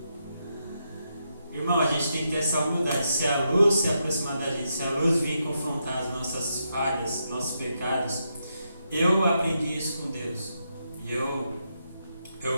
Irmão, a gente tem que ter essa humildade. Se a luz se aproximar da gente, se a luz vir confrontar as nossas falhas, nossos pecados, eu aprendi isso com Deus. E eu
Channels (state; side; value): inverted; both; correlation -0.82